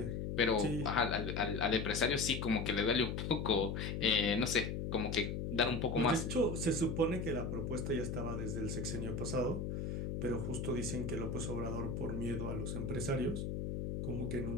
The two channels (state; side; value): noise; left; hum, 3 dB below the sound